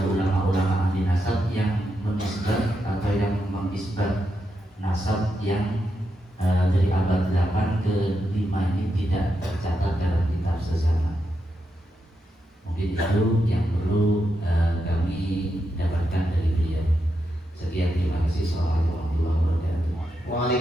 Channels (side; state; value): both; normal; correlation 0.85